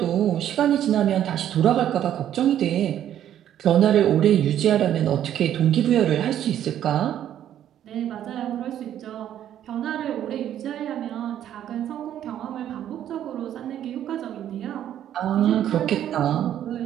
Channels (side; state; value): left; quieter; 10.9 dB